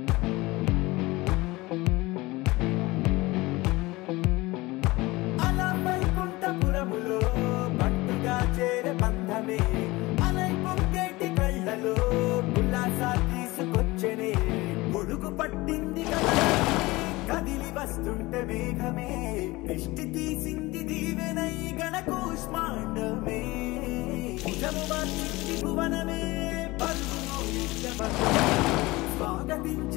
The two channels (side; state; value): right; quieter; 21.1 dB